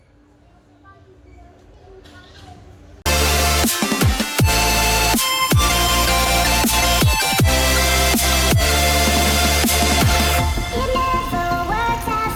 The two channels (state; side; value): identical; both; correlation 1.00